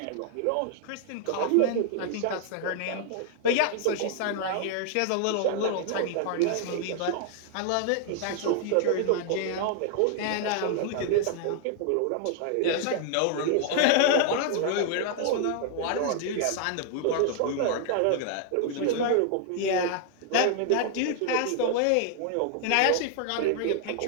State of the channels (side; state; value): both; different; correlation 0.00